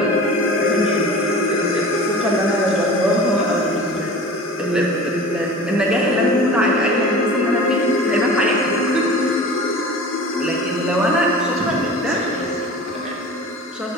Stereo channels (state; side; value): normal; both; correlation 0.38